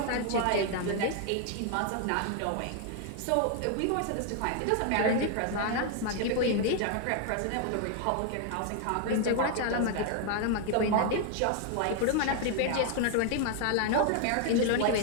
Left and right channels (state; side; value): different; both; correlation 0.00